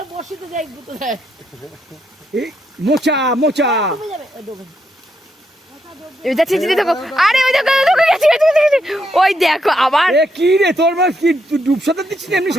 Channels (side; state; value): both; normal; correlation 0.78